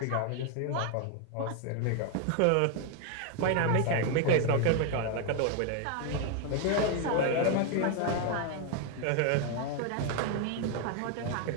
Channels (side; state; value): both; different; correlation 0.01